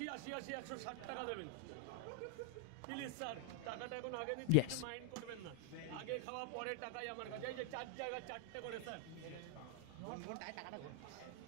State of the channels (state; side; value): different; both; correlation 0.00